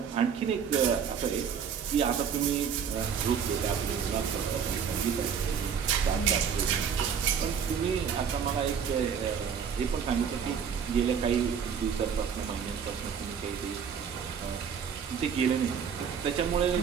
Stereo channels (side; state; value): left; quieter; 7.2 dB